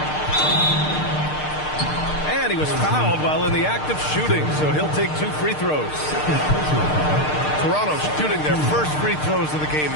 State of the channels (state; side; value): late; right; 6.6 ms